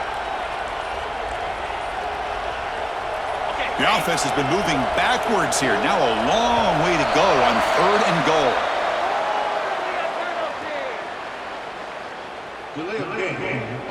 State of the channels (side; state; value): both; identical; correlation 1.00